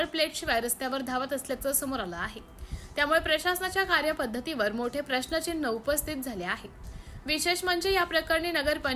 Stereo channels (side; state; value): both; identical; correlation 1.00